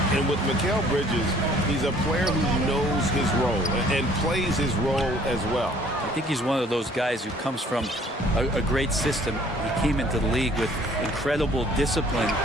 And with Mikal Bridges, he's a player who knows his role and plays his role as well. I think he's one of those guys who comes from a great system. He came into the league with incredible discipline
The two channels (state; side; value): normal; both; correlation 0.57